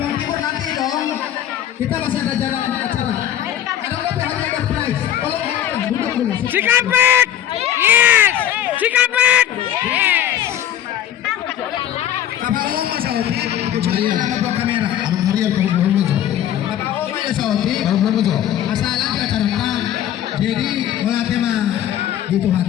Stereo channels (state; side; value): quieter; right; 11.1 dB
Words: Timur nanti dong. Kita masih ada jalan acara. Ada berapa hanya ada prize. Tolong duduk dulu. Cikampek. Yes. Cikampek. Yes. Bapak Oma Saudi, kecuali nama buat kamera. Abang Harian kalau belum aja. Bapak Oma ya Saudi. Kalau belum aja. Masalah di acara kita. Jadi mulai tema gitu